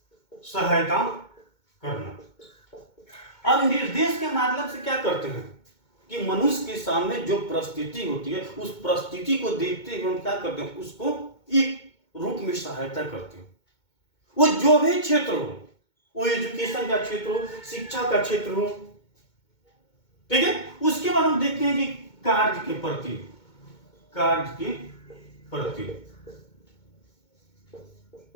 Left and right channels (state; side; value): late; right; 2.2 ms